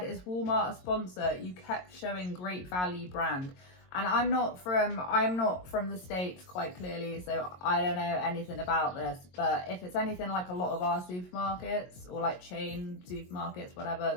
is Walmart a sponsor? You kept showing great value brand. And I'm not from the States, quite clearly, so I don't know anything about this. But if it's anything like a lot of our supermarkets, or like chain supermarkets,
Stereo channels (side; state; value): right; late; 22 ms